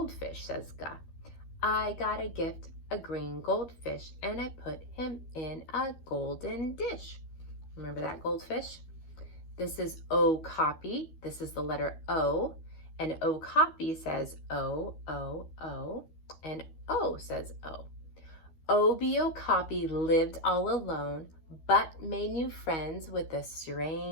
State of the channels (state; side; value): late; right; 13 ms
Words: says ga. I got a gift, a green goldfish, and I put him in a golden dish. Remember that goldfish? This is okapi. This is the letter O. And okapi says O, O, O. And O says O. Obi Okapi lived all alone, but made new friends with a